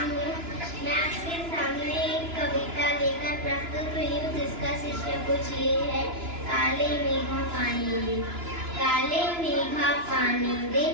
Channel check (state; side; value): late; left; 2.9 ms